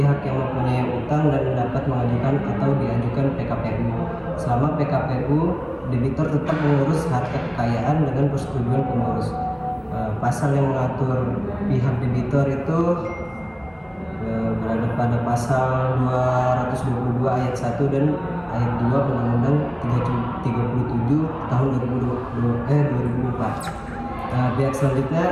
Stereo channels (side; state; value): both; identical; correlation 1.00